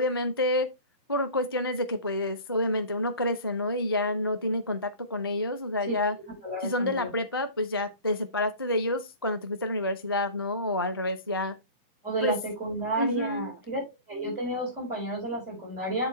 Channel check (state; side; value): inverted; both; correlation -0.39